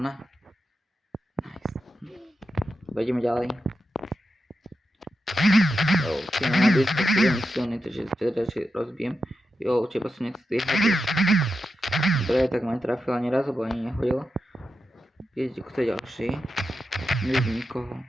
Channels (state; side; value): normal; both; correlation 0.89